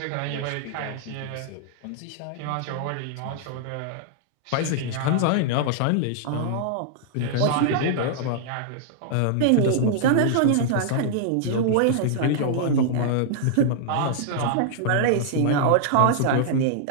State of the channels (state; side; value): different; both; correlation -0.01